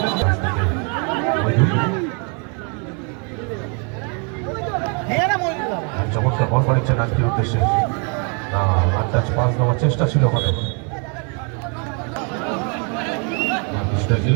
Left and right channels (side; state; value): left; quieter; 36.6 dB